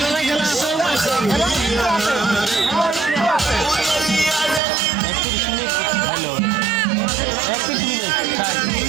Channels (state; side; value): drops out; left; at 4.6 s